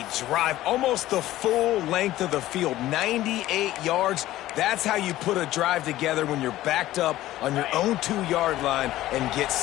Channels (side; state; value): right; quieter; 15.2 dB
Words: drive. Almost the full length of the field, 98 yards. That's how you put a drive together when you're backed up on your own 2-yard line and get